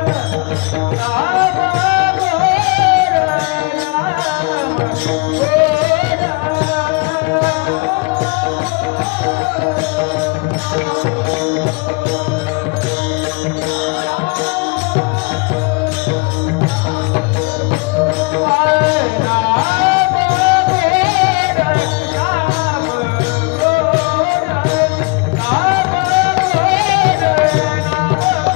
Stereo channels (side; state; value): right; quieter; 28.8 dB